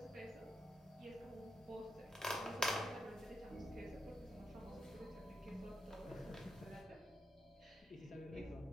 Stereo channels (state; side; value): normal; both; correlation 0.83